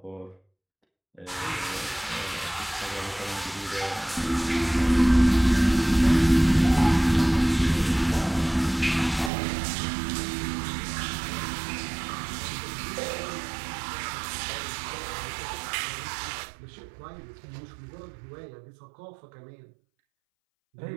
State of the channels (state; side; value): drops out; left; at 9.3 s